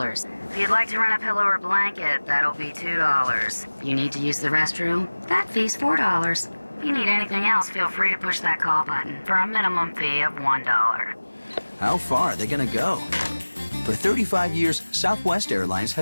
If you'd like to rent a pillow or blanket, that'll be $2. If you need to use the restroom, that fee's $4. If you need anything else, feel free to push that call button for a minimum fee of $1. How far are they going to go? For 35 years, Southwest Airlines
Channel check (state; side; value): inverted; both; correlation -1.00